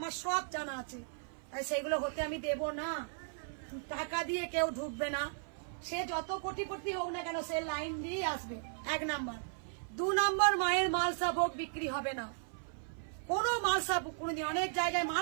সব জানা আছে, তাই সেগুলো হতে আমি দেব না। টাকা দিয়ে কেউ ঢুকবে না, সে যত কোটিপতি হোক না কেন সে লাইন দিয়ে আসবে, 1 নম্বর। 2 নম্বর, মায়ের মালসা ভোগ বিক্রি হবে না, কোনো মালসা, অনেক জায়গায়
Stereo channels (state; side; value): silent; left; 54 dB below the other